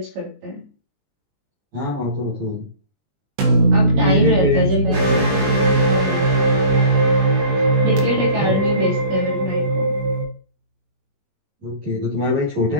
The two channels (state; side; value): late; left; 20 ms